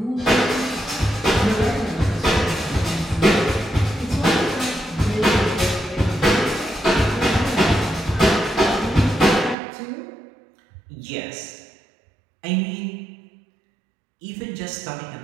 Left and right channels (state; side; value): drops out; left; at 9.6 s